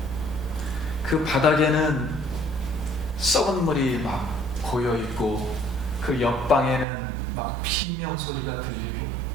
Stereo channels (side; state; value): left; drops out; at 6.9 s